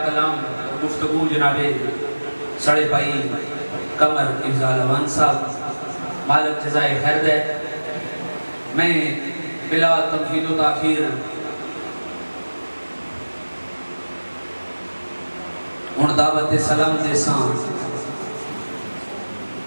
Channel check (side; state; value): both; inverted; correlation -1.00